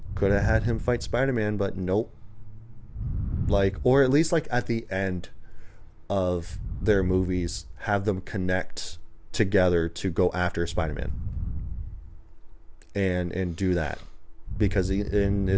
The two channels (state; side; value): identical; both; correlation 1.00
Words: could have had him fight Spider-Man, but nope. Like, or at least like at the end of their movies, have them connect together to go after Spider-Man and do that. Because